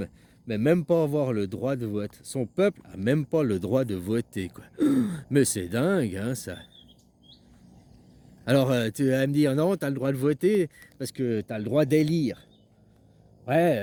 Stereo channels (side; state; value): both; identical; correlation 1.00